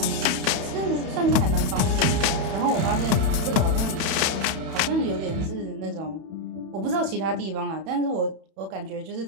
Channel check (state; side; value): late; left; 31 ms